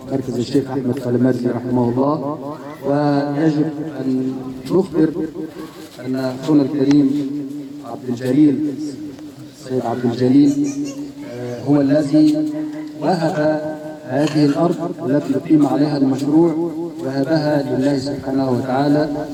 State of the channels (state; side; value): identical; both; correlation 1.00